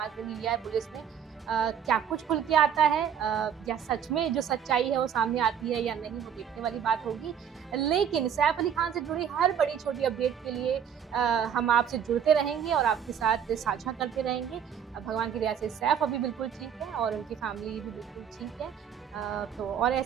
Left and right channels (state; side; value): quieter; left; 8.3 dB